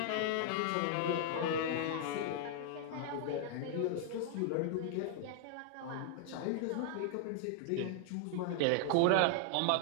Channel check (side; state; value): both; different; correlation -0.01